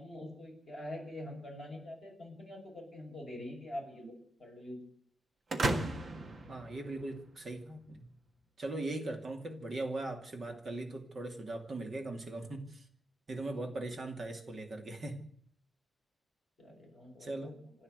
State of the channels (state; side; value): normal; both; correlation 0.85